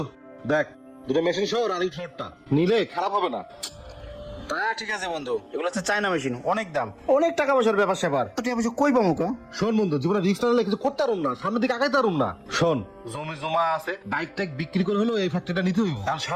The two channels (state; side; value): identical; both; correlation 1.00